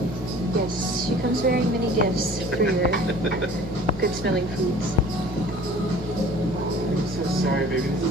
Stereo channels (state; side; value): normal; both; correlation 0.47